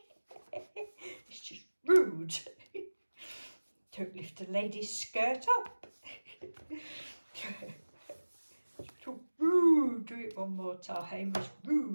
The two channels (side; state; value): both; inverted; correlation -1.00